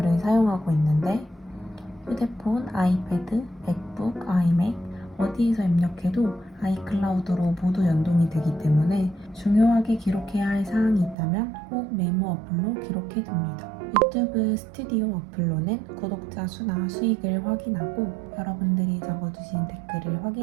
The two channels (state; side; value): drops out; left; at 11.2 s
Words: 사용하고 있는데 휴대폰, 아이패드, 맥북, 아이맥 어디에서 입력해도 아이클라우드로 모두 연동이 되기 때문에 중요하게 기록해야 할 사항이 있다면 꼭 메모 어플로 기록해둡니다. 유튜브 스튜디오 어플로는 구독자 수나 수익을 확인하고 여러분들이 적어주신 댓글을